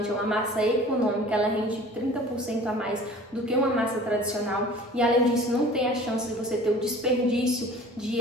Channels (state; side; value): normal; both; correlation 0.45